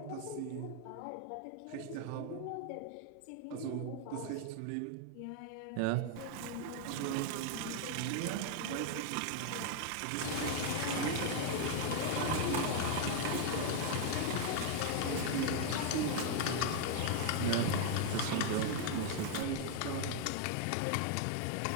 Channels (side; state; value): both; different; correlation 0.00